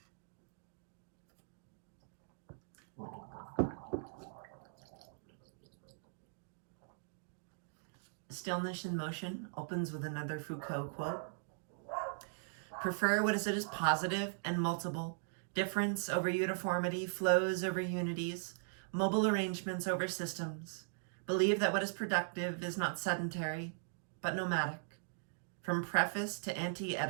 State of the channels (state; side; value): silent; left; digital silence